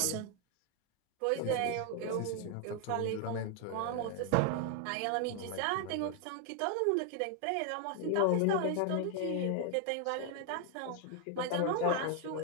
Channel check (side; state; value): both; different; correlation 0.00